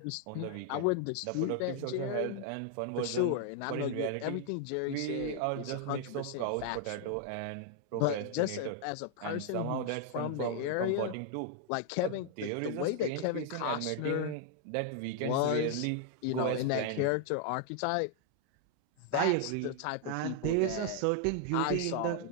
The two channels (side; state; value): both; different; correlation 0.00